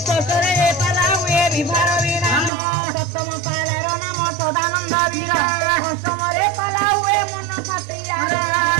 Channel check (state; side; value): drops out; left; at 2.5 s